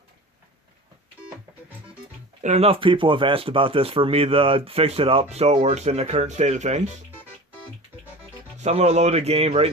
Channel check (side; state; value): both; normal; correlation 0.36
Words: And enough people have asked about this for me to fix it up so it works in the current state of things. So I'm going to load a game right